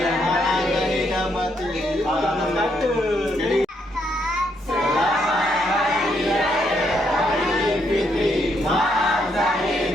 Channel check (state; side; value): normal; both; correlation 0.75